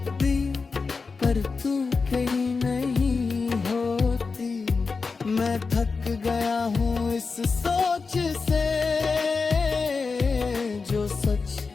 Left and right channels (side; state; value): right; quieter; 4.6 dB